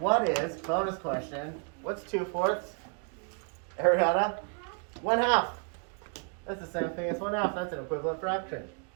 is, bonus question, what's 2/4? Ariana? 1/2. That's the same thing as 1/2. That's an equivalent fraction.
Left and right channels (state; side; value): quieter; left; 39.9 dB